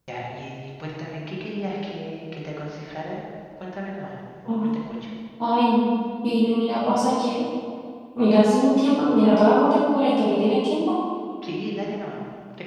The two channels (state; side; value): identical; both; correlation 1.00